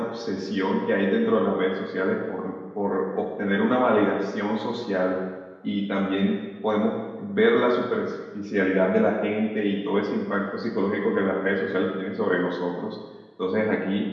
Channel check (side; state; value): both; identical; correlation 1.00